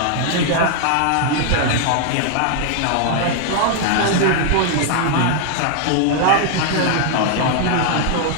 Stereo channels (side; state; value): both; different; correlation 0.00